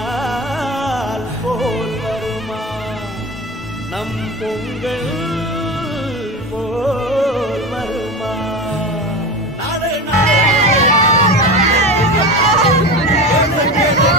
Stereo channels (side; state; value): both; normal; correlation 0.27